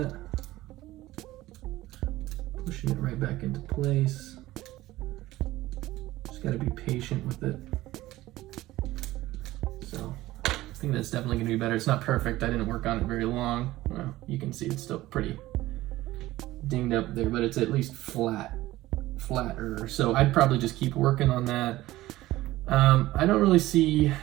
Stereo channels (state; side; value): quieter; left; 16.8 dB